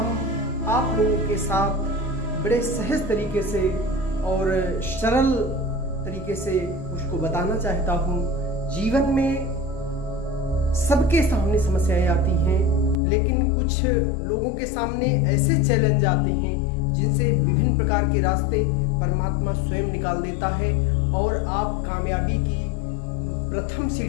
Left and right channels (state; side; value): drops out; right; at 13.0 s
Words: आप लोगों के साथ बड़े सहज तरीके से और सरल तरीके से उसको बताना चाहता हूँ। जीवन में सबके सामने समस्याएं आती हैं, लेकिन कुछ लोगों के सामने ऐसे चैलेंज आते हैं जिनसे विभिन्न प्रकार के रास्ते परमात्मा स्वयं निकाल देता है और आप कामयाबी की प्रथम